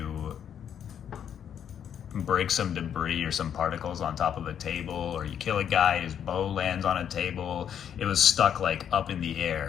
break some debris or some particles on top of a table, or you kill a guy, his bow lands on a table, it was stuck like up in the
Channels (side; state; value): right; quieter; 8.8 dB